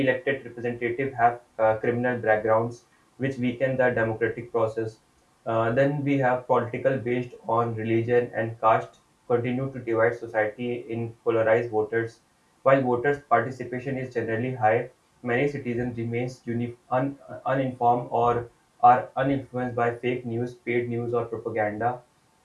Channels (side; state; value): both; identical; correlation 1.00